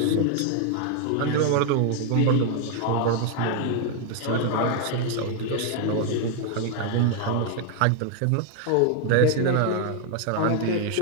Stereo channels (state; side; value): different; both; correlation 0.00